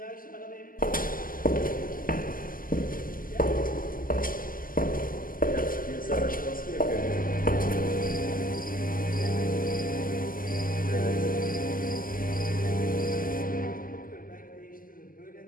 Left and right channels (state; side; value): late; right; 0.41 ms